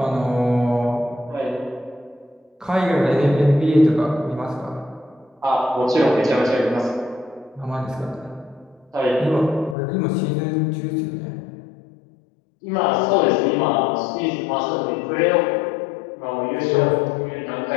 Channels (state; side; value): drops out; right; at 9.8 s